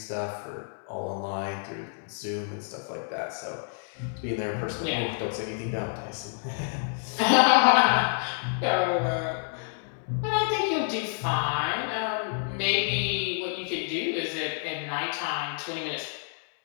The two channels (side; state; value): right; silent; 58 dB below the other